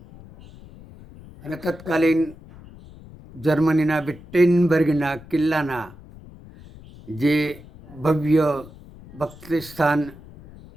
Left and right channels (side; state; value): left; noise; rumble, 20 dB below the sound